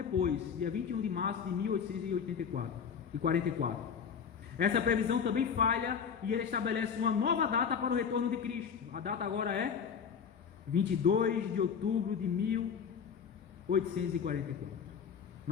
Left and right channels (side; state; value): right; quieter; 6.9 dB